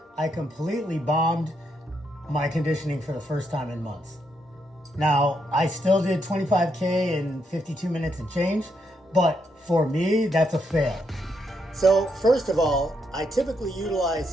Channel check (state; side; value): normal; both; correlation 0.78